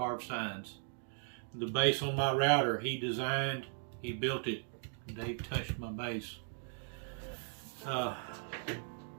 signs. The base on my router he designed, he built it. Dave touched my base.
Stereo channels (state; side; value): silent; left; 53 dB below the other